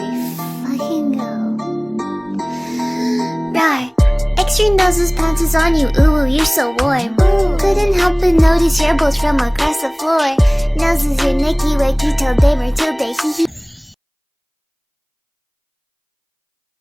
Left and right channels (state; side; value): identical; both; correlation 1.00